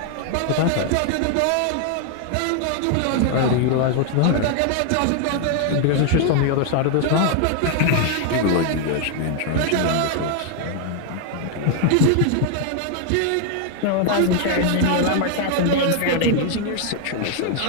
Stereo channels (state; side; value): different; both; correlation 0.00